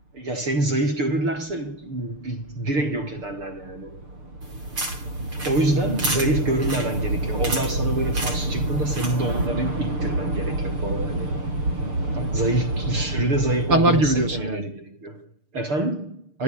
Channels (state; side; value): late; left; 6.7 ms